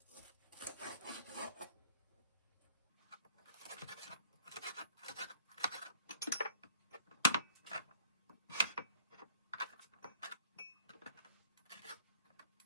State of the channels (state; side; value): inverted; both; correlation -0.53